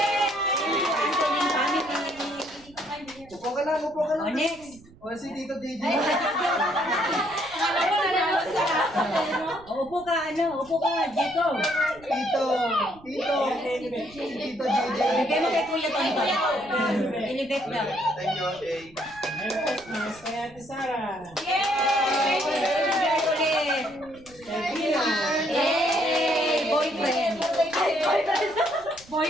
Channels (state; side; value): noise; right; rumble, 24 dB below the sound